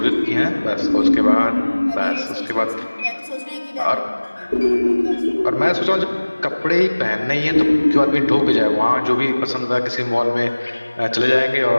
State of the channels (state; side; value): inverted; both; correlation -1.00